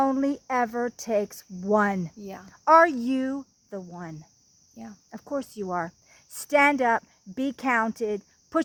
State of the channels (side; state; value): both; identical; correlation 1.00